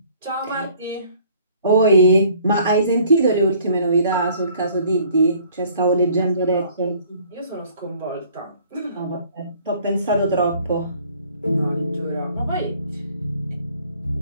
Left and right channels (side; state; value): both; inverted; correlation -0.57